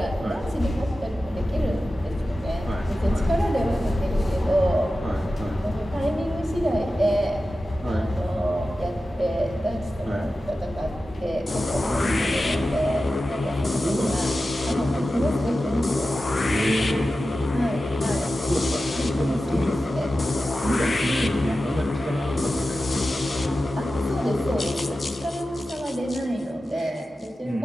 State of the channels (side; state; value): both; normal; correlation 0.93